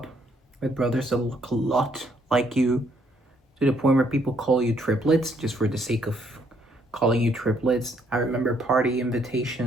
with brothers that look a lot like you, to the point where people call you triplets just for the sake of calling you triplets. I remember party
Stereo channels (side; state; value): both; normal; correlation 0.69